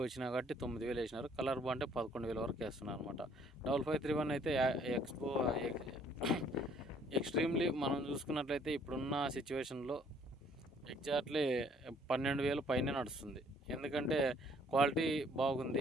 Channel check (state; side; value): normal; both; correlation 0.61